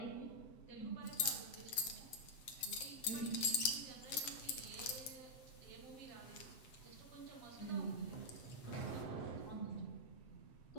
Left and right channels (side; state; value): right; late; 8.1 ms